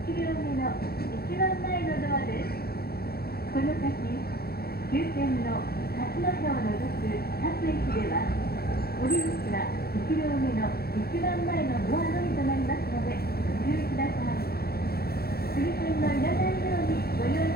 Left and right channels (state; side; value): late; right; 0.45 ms